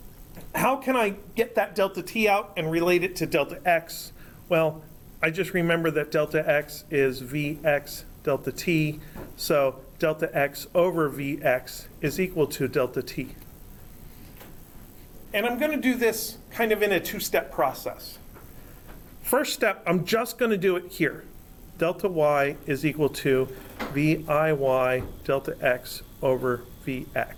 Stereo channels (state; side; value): identical; both; correlation 1.00